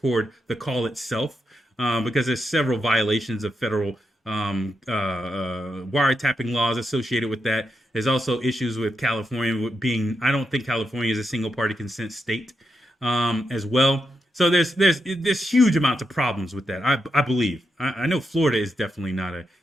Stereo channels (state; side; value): normal; both; correlation 0.84